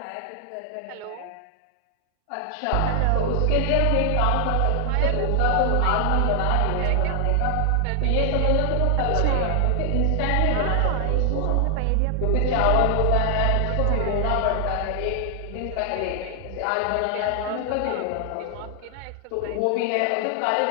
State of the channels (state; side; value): different; both; correlation 0.00